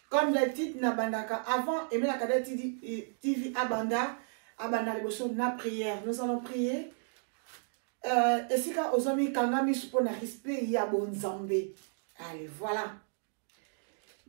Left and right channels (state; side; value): silent; left; digital silence